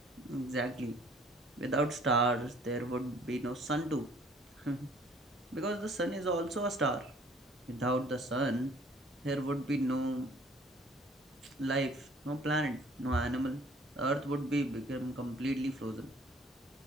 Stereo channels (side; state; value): both; normal; correlation 0.56